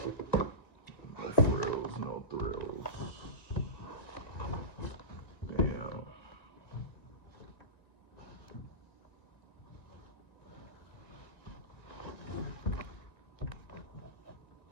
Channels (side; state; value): right; late; 1.9 ms